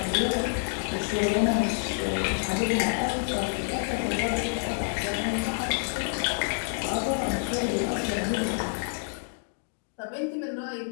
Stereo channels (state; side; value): silent; right; digital silence